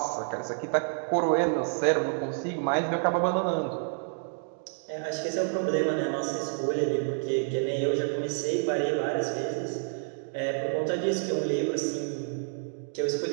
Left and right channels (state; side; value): silent; left; 59 dB below the other